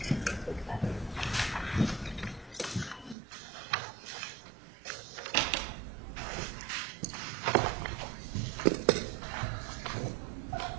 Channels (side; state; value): left; drops out; at 3.2 s